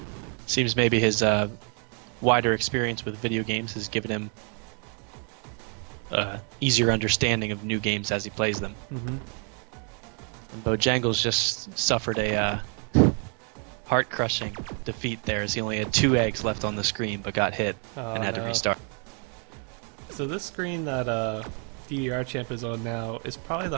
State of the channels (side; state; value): left; quieter; 39.7 dB